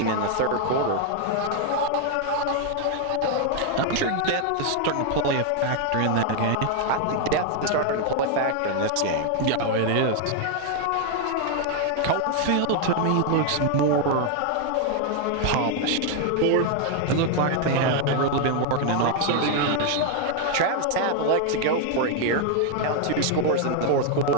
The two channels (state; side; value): different; both; correlation 0.00